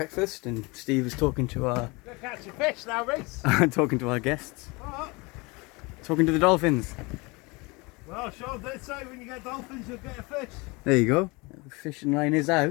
and Steve is talking to our Go catch your fish now, Reese. talking to our guests, What? talking to the dolphins. Well, Sean did say when you get dolphins, you'll get a fish. There you go. The fishing line is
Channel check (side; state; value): right; quieter; 26.3 dB